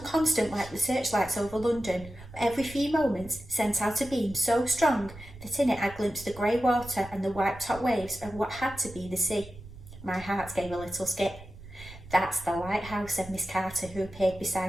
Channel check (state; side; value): noise; right; rumble, 17 dB below the sound